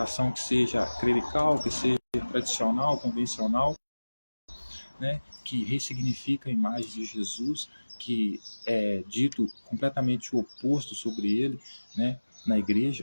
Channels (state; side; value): inverted; both; correlation -1.00